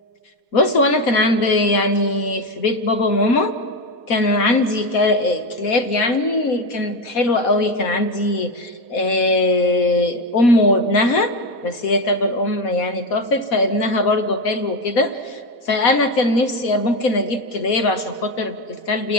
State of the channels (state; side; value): late; right; 4.1 ms